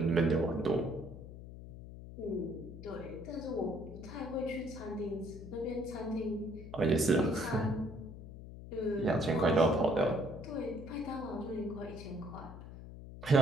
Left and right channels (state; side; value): noise; left; hum, 13 dB below the sound